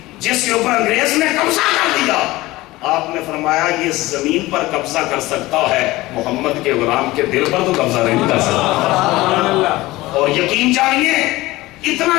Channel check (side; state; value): right; quieter; 19.0 dB